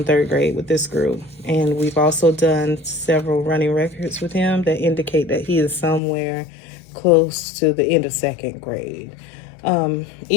third grade with this group, and we've also done several running records with him that indicate that he is somewhere close to the end of second grade.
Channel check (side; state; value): right; drops out; at 6.0 s